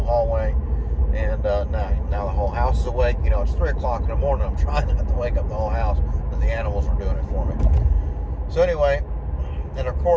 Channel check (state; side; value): identical; both; correlation 1.00